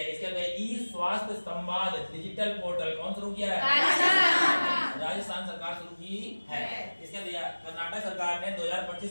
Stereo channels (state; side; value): inverted; both; correlation -1.00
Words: इसके बाद ई स्वास्थ्य संवाद डिजिटल पोर्टल कौन शुरू किया है? राजस्थान सरकार शुरू की है। इसके बाद कर्नाटक सरकार ने